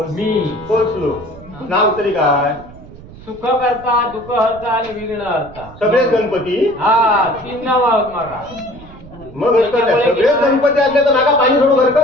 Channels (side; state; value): right; noise; rumble, 19 dB below the sound